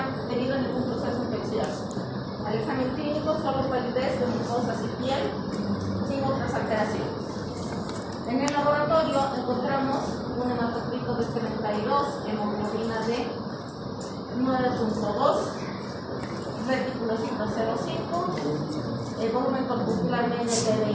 tenido ningún proceso infeccioso. Al examen clínico solo palidez de mucosas y piel, sin otras alteraciones. En el laboratorio encontramos un hematocrito de 32, hemoglobina de 9,2, reticulocito 0,5, el volumen corpuscular medio de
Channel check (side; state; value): both; identical; correlation 1.00